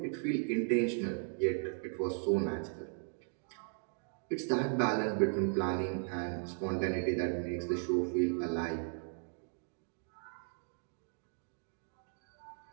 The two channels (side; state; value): left; silent; 53 dB below the other